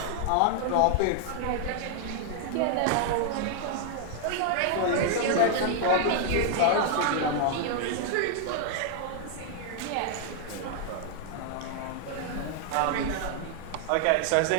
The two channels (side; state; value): both; different; correlation 0.00